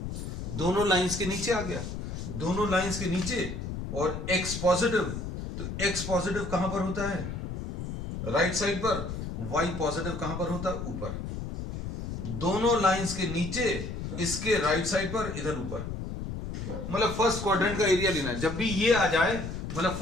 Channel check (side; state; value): left; noise; rumble, 6 dB below the sound